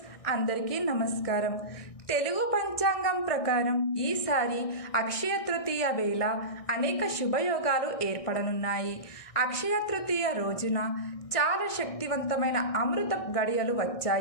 అందరికీ నమస్కారం. తెలుగు పంచాంగం ప్రకారం ఈసారి అక్షయ తృతీయ వేళ అనేక శుభయోగాలు ఏర్పడనున్నాయి. అక్షయ తృతీయ రోజున చాలా శక్తివంతమైన అమృత గడియలు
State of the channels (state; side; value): late; right; 1.6 ms